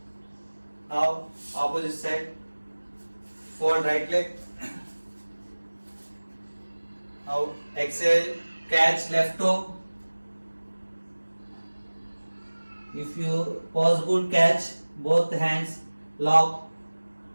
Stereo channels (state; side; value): inverted; both; correlation -1.00